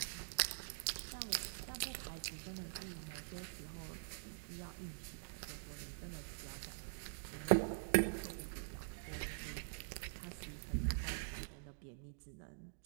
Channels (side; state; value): left; silent; digital silence